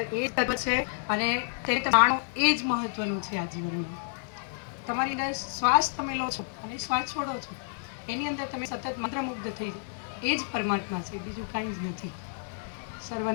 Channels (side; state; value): right; silent; digital silence